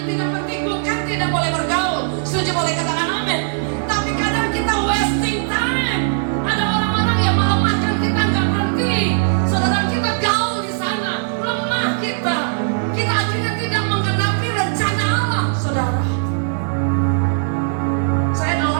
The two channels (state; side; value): silent; left; 62 dB below the other